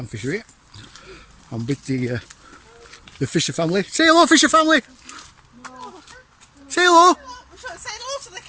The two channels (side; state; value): both; identical; correlation 1.00